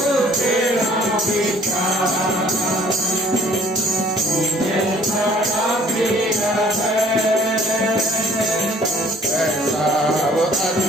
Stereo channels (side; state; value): both; normal; correlation 0.56